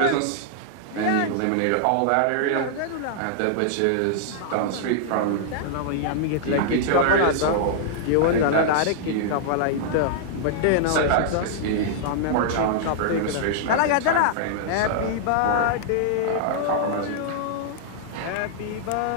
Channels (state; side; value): different; both; correlation -0.01